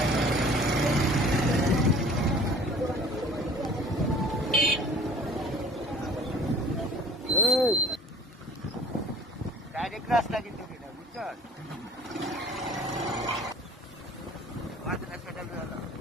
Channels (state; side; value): normal; both; correlation 0.49